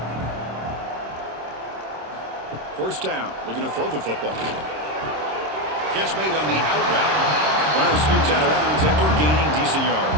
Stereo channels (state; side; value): late; left; 26 ms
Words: First down. Looking to throw the football. Catch made on the out route. Runner scoots out of bounds after gaining decent